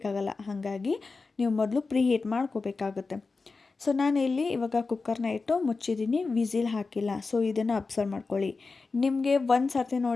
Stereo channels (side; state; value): right; quieter; 4.1 dB